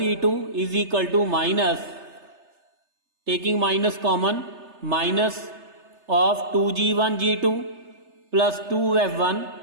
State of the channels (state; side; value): late; left; 3.3 ms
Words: is equal to minus, taking minus common, minus of 2G1 G2 plus 2F1